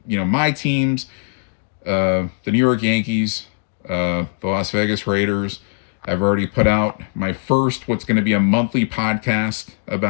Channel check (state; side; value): silent; right; digital silence